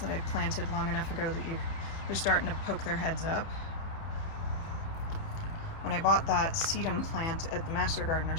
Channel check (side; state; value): right; late; 30 ms